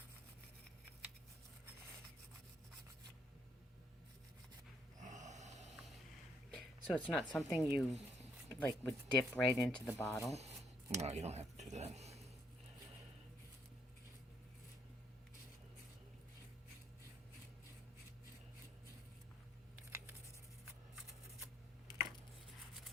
So it's not something you like would dip right into the bottle? No, you don't have to do that.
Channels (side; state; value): both; normal; correlation 0.72